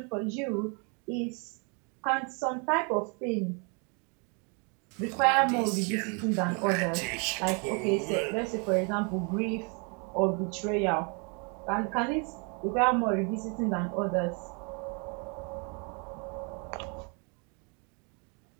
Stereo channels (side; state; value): left; quieter; 35.3 dB